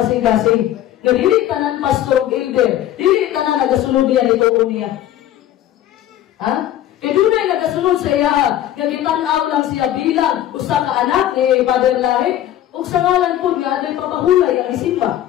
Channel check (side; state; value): right; quieter; 12.3 dB